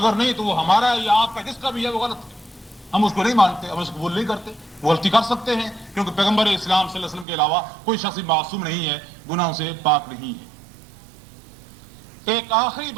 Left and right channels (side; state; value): left; drops out; at 7.2 s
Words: نہیں تو وہ ہمارا یا آپ کا جس کا بھی ہے وہ غلط ہے، ہم اس کو نہیں مانتے، ہم اس کو قبول نہیں کرتے۔ وہ غلطی کر سکتے ہیں کیونکہ پیغمبر اسلام صلی اللہ علیہ وسلم کے علاوہ کوئی شخص معصوم نہیں ہے، گناہوں سے پاک نہیں ہے۔ ایک آخری